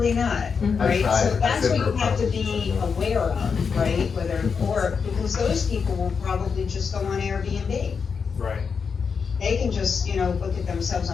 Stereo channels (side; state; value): right; quieter; 5.8 dB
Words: not, right? tried. So I that's said what you no have to problem. be aware of, right? Whether, or, because those people will probably just go on Airbnb. Right. They can just, you know, book it themselves